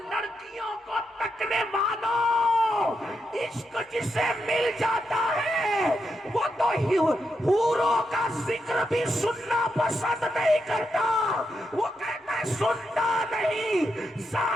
لڑکیوں کو تکنے والوں، عشق جسے مل جاتا ہے وہ تو حوروں کا ذکر بھی سننا پسند نہیں کرتا، وہ کہتا ہے سنتا نہیں،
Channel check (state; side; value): normal; both; correlation 0.84